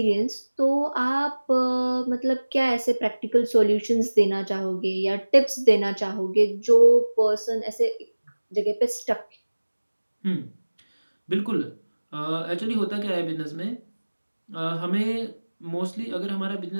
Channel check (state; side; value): inverted; both; correlation -1.00